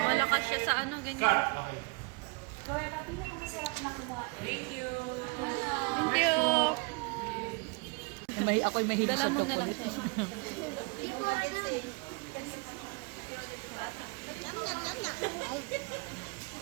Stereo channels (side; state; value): left; quieter; 31.4 dB